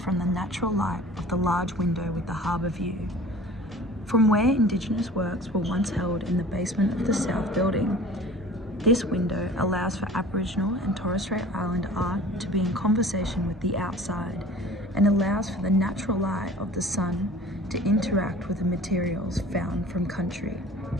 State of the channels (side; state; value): both; normal; correlation 0.44